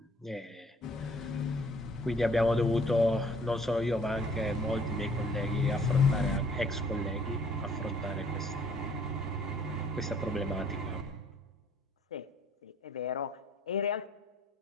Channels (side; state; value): both; normal; correlation 0.59